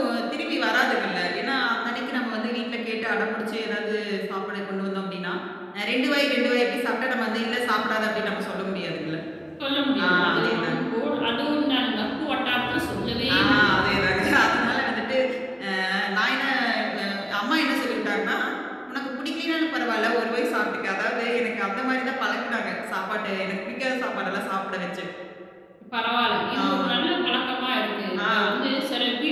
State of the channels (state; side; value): identical; both; correlation 1.00